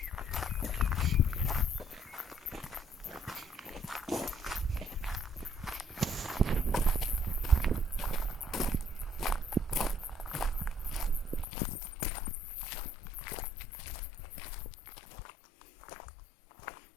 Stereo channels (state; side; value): drops out; right; at 11.5 s